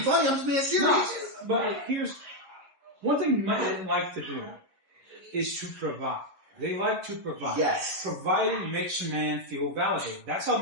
funny, I'm just being serious. No, but here's one thing men like to do is to provide. They like to provide. Yes. Providing makes a man feel validated. That's how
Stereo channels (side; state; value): left; late; 11 ms